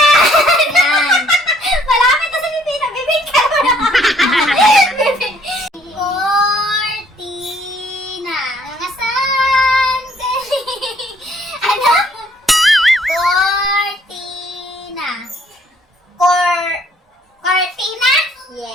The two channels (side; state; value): both; normal; correlation 0.62